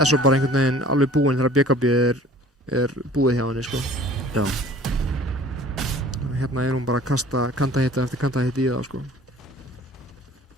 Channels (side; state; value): both; normal; correlation 0.48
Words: svo bara einhvern veginn alveg búinn þegar BKB er búið hjá henni, sko. Já, Hérna er hún bara að kasta kandahita eftir kandahita í það, sko.